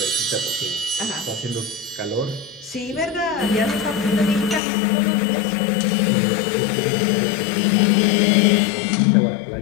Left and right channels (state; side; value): drops out; right; at 4.6 s